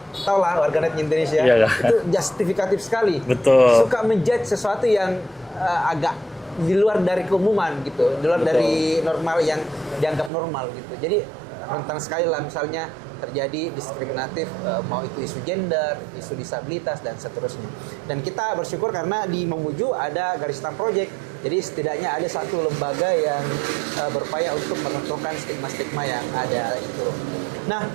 tau lah warganet Indonesia, itu justifikatif sekali. Betul. Suka menjudge sesuatu yang agak di luar dari keumuman gitu, di luar dari normal yang dianggap normal gitu. Jadi rentan sekali lah misalnya terjadi diskriminatif, mau itu isu gender, isu disabilitas, dan seterusnya. Dan kita bersyukur karena di Mamuju ada Garisan Project, jadi setidaknya ada satu lembaga yang berupaya untuk meruntuhkan stigma-stigma yang ada itu. Nah,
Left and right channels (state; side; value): drops out; left; at 10.3 s